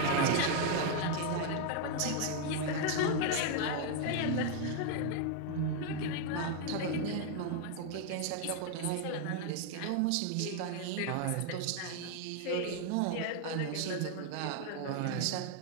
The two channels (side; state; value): both; different; correlation 0.00